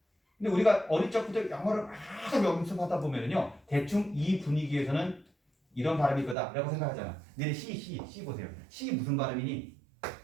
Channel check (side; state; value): left; drops out; at 6.4 s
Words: 근데 우리가 어릴 적부터 영어를 막 연습하다 보면은요 대충 이 분위기에서는 이런 발음일 거다라고 생각하잖아. 근데 C 보세요. C 무슨 발음이니?